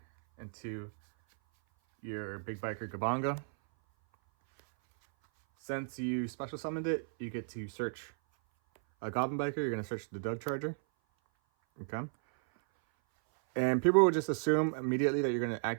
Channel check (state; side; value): silent; left; 55 dB below the other